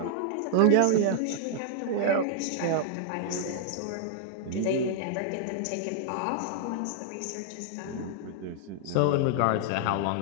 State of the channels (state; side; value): different; both; correlation -0.01